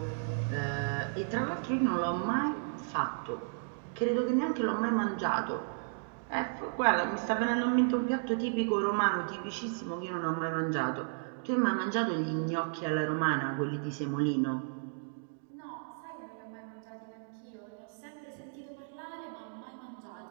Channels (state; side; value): silent; left; digital silence